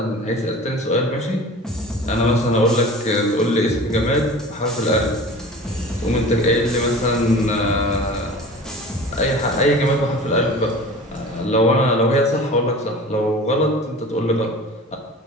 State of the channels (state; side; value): normal; both; correlation 0.39